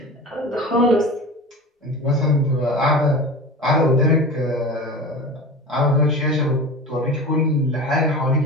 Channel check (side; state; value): both; normal; correlation 0.32